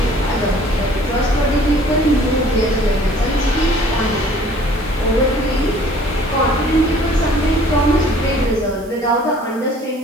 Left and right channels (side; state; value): right; noise; hiss, 24 dB below the sound